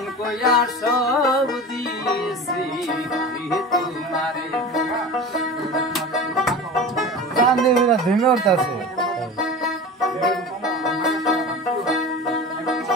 কইয়া সব দিয়েছি তোমারে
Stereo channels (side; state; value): both; normal; correlation 0.33